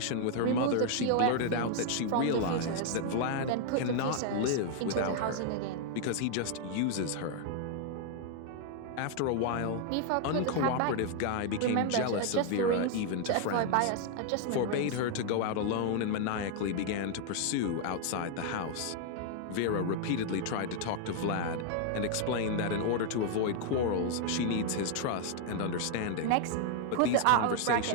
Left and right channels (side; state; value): both; different; correlation 0.00